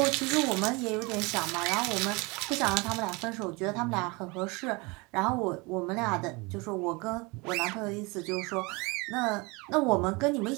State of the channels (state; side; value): quieter; left; 26.7 dB